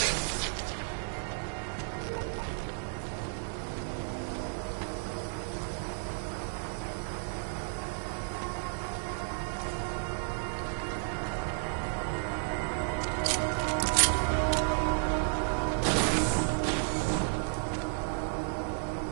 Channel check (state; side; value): silent; left; 56 dB below the other